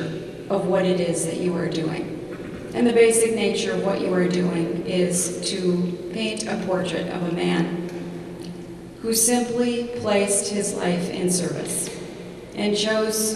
of what it is that you are doing. And the basic nature of what you are doing is to paint a portrait of a man who simply placed his life in service and chose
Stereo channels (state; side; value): identical; both; correlation 1.00